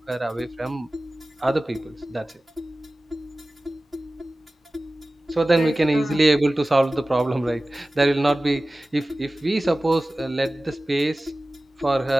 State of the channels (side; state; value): both; normal; correlation 0.97